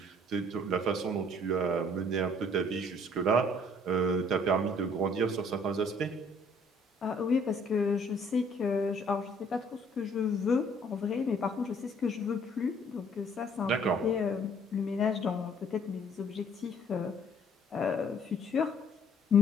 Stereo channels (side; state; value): both; normal; correlation 0.59